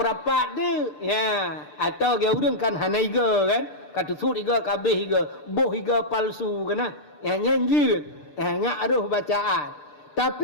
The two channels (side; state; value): right; late; 6.7 ms